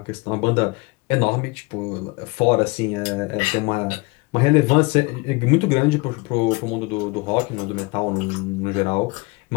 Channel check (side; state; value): right; quieter; 25.7 dB